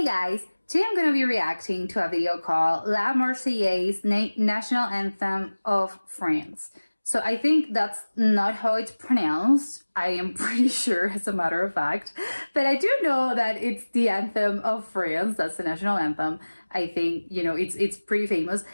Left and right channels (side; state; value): both; inverted; correlation -1.00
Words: guys, today I'm going to be reacting to a video called La Marseillaise, National Anthem of France. So I think that's not how it's pronounced. I am pretty sure, as a matter of fact. But I do know that it's the anthem of France. That's the national anthem. I think, it's pretty famous.